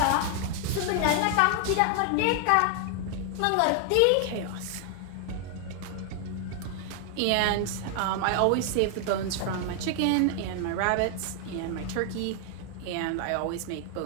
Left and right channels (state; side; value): different; both; correlation 0.00